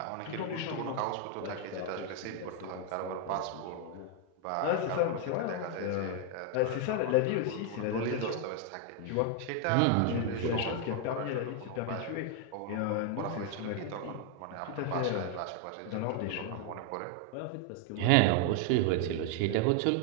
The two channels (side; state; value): both; different; correlation 0.00